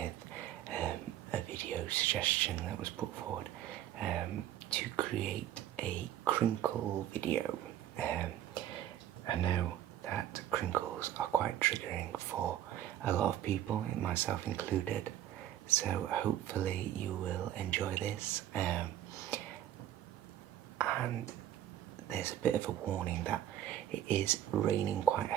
a video suggestion that was put forward to create a crinkle video. I know that crinkles are quite triggering for a lot of people, myself included, so hopefully you will enjoy this. And there's a bit of a warning that it is raining quite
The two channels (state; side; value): quieter; left; 12.0 dB